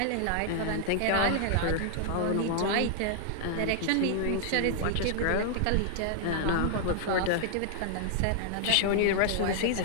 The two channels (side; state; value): both; different; correlation -0.01